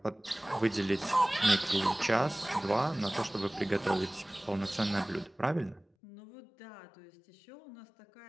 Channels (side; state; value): right; drops out; at 5.9 s